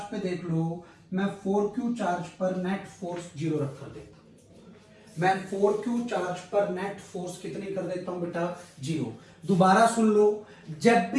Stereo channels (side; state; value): both; identical; correlation 1.00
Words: पे देख लो, मैं 4Q चार्ज पर नेट फोर्स जीरो रख कर देता हूं। मैं 4Q चार्ज पर नेट फोर्स कितनी कर देता हूं बेटा? जीरो। दोबारा सुन लो, जब